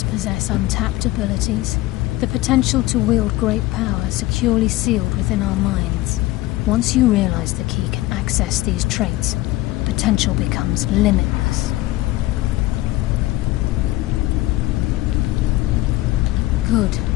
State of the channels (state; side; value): quieter; right; 17.8 dB